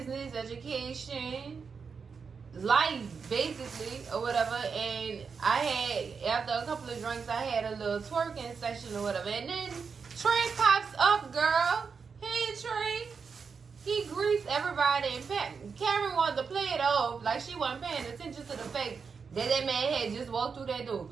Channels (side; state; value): left; quieter; 5.6 dB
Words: education, life, basically, or whatever. And I had, after a couple of drinks, I had a little twerking session or whatever. And then Trey pops up, girl. Hey, Trey. He greets everybody. And Karen wanted to play it off like she wasn't paying attention to the fact that that man had just walked through that door.